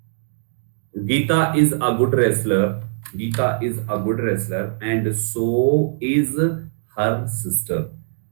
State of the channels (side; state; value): left; silent; digital silence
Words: Geeta is a good wrestler, Geeta is a good wrestler and so is her sister.